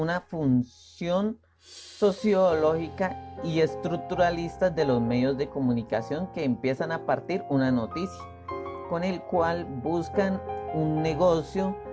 función sociológica y estructuralista de los medios de comunicación, que empiezan a partir una noticia, con el cual buscan un negocio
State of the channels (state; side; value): identical; both; correlation 1.00